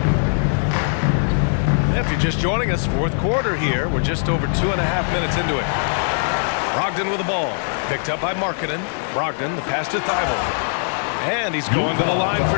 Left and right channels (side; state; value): right; silent; 59 dB below the other